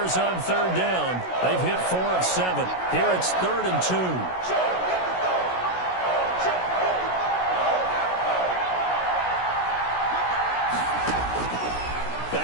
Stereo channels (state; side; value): late; right; 16 ms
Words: on 3rd down. They've hit 4 of 7. Here it's 3rd and 2.